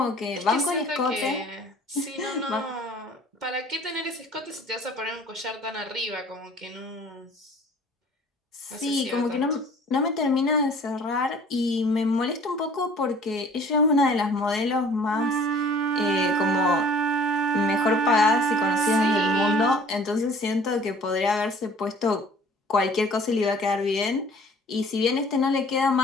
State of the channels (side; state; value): both; normal; correlation 0.51